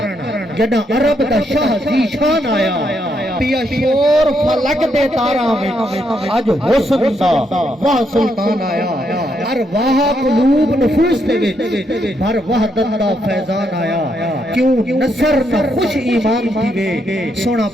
جڑا عرب دا شاہ زی شان آیا۔ پیا شور فلک دے تاراں وچ، اج حسن دا وہ سلطان آیا۔ ارواح قلوب نفوس دے وچ بھر وحدت دا فیضان آیا۔ کیوں نصر نہ خوش ایمان تھی وے، سونا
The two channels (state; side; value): normal; both; correlation 0.77